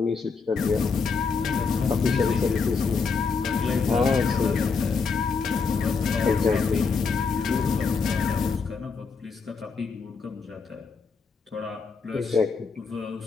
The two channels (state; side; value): quieter; right; 5.0 dB